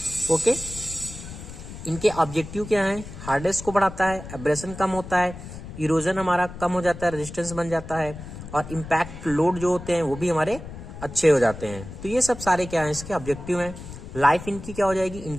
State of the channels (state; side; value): noise; left; rumble, 12 dB below the sound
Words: ओके, इनके ऑब्जेक्टिव क्या है, हार्डनेस को बढ़ाता है, एब्रेशन कम होता है, इरोजन हमारा कम हो जाता है, रेजिस्टेंस बन जाता है, और इम्पैक्ट लोड जो होते हैं वो भी हमारे अच्छे हो जाते हैं। तो ये सब सारे क्या है, इसके ऑब्जेक्टिव हैं। लाइफ इनकी क्या हो जाएगी,